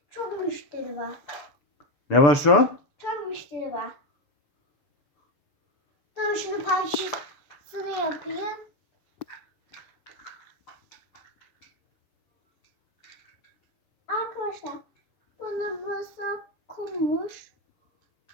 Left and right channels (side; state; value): right; late; 6.9 ms